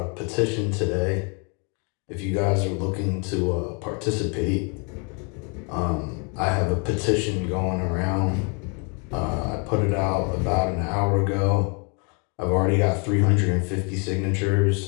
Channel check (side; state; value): right; quieter; 35.9 dB